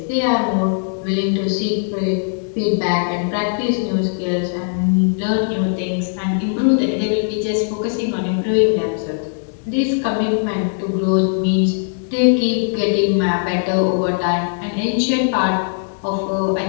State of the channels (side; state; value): right; silent; digital silence